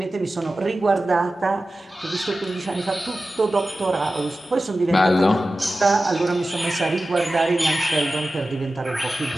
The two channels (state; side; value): normal; both; correlation 0.95